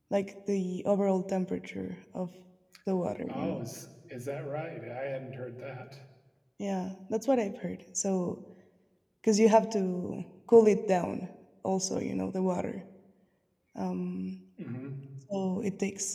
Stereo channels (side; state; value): both; identical; correlation 1.00